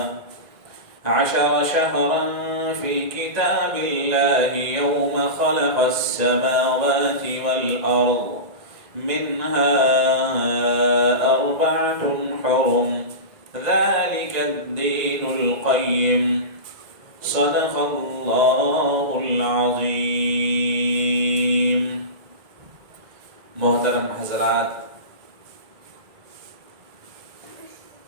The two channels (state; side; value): late; left; 1.8 ms